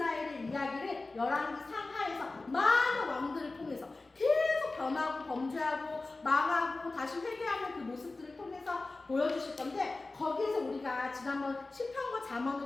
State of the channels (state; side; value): quieter; right; 3.3 dB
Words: 이야기를 열왕기 상하에서 많은 왕들을 통해서 계속 변하고 범죄하고 망하고 다시 회개하는 그 모습들을 통해서 보여주실 건데, 거기에서 우리가 지난번 시편과